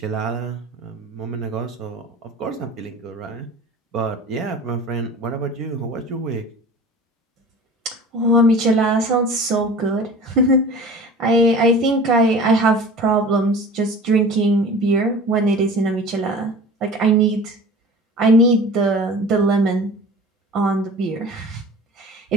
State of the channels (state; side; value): normal; both; correlation 0.40